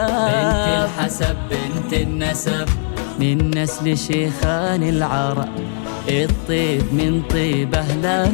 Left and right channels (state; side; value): silent; right; digital silence